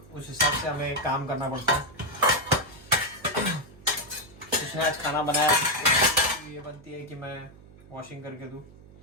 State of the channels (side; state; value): right; noise; hum, 23 dB below the sound